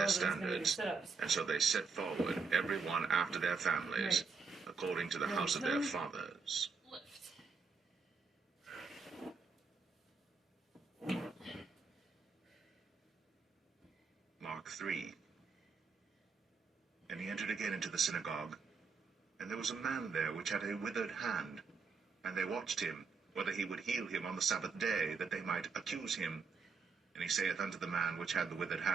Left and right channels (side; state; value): left; quieter; 5.0 dB